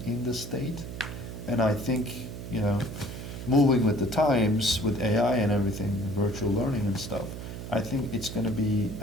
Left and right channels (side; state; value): right; noise; hum, 9 dB below the sound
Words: in the state. And I think, you know, moving with the times, with AI and everything, virtual learning and stuff, I think it's going to be